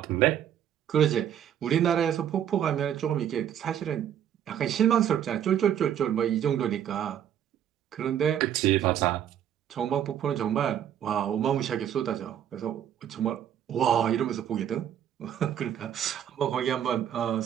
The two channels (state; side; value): quieter; left; 9.9 dB